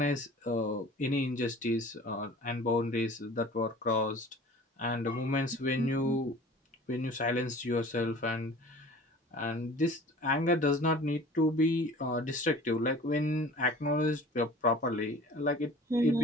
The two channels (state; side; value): normal; both; correlation 0.44